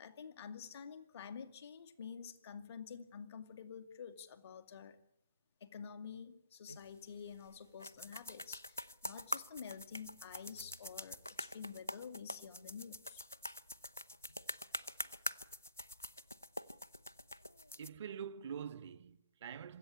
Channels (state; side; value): inverted; both; correlation -0.65